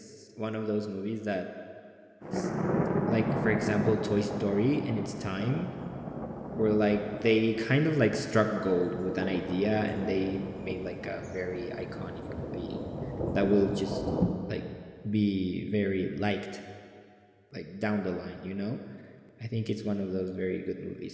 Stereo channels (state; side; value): identical; both; correlation 1.00